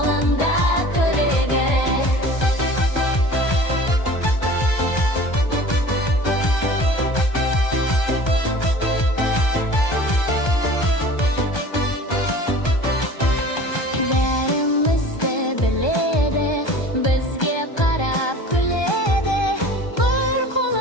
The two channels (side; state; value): right; late; 1.2 ms